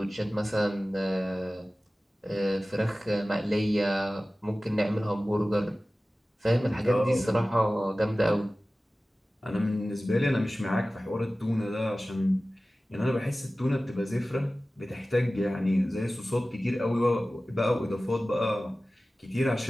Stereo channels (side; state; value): both; normal; correlation 0.96